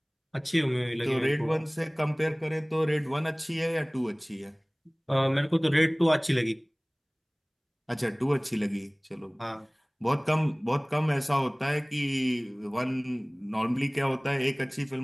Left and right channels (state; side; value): identical; both; correlation 1.00